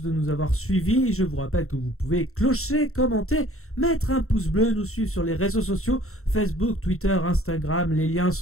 de nous avoir suivis. Je vous rappelle que vous pouvez clocher, commenter, mettre un pouce bleu, nous suivre sur les réseaux sociaux, Facebook, Twitter, Instagram, les liens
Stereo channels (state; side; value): late; right; 0.63 ms